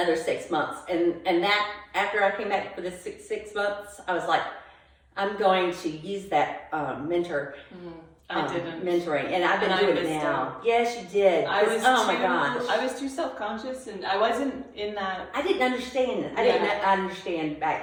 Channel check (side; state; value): both; identical; correlation 1.00